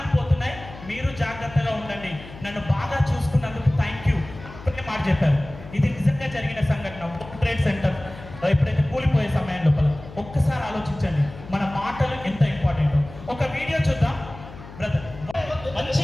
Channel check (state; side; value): noise; left; hum, 16 dB below the sound